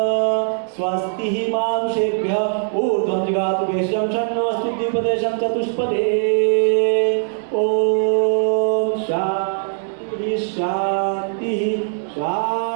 स्वस्ति मानुषेभ्यः ऊर्ध्वं जगातु भेषजं षण्णोऽस्तु द्विपदेशं चतुष्पदे। ओम शांति शांति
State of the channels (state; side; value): silent; left; digital silence